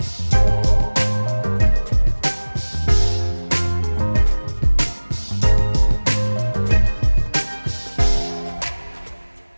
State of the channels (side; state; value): both; inverted; correlation -1.00